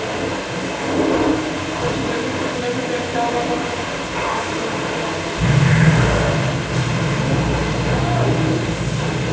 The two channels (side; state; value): both; identical; correlation 1.00